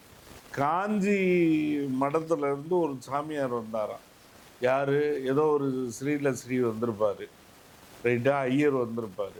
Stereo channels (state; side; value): identical; both; correlation 1.00